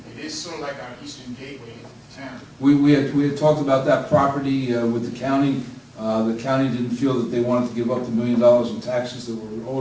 it is sort of like our eastern gateway into town. We had talked about that property with the county. The county didn't feel that they wanted to give up the $1 million in taxes that were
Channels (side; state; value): both; identical; correlation 1.00